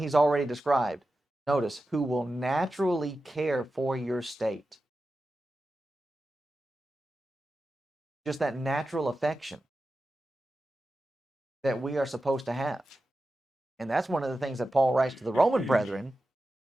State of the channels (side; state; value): both; normal; correlation 0.92